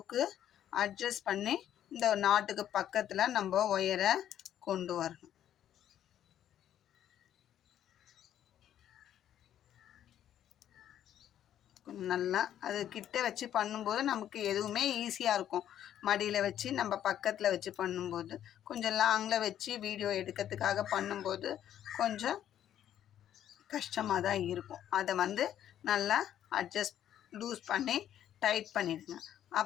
அட்ஜஸ்ட் பண்ணி இந்த நாட்டுக்கு பக்கத்தில் நம்ம ஒயரை கொண்டு வரணும். நல்லா அது கிட்ட வச்சு பண்ணும்போது நமக்கு எதுவுமே ஈஸியாக இருக்கும். மடியில் வச்சு நம்ம பக்கத்தில் வச்சு பண்ணும்போது, கொஞ்சம் லாங்கில் வச்சு வீடியோ எடுக்கிறதுக்காக பண்ணும்போது கொஞ்சம் கஷ்டமாக தான் இருக்கும். அதை வந்து நல்லா அட்ஜஸ்ட் லூஸ் பண்ணி டைட் பண்ணிடுங்க.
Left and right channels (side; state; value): right; quieter; 10.9 dB